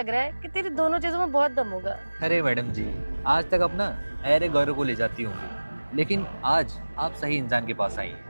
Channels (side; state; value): both; inverted; correlation -1.00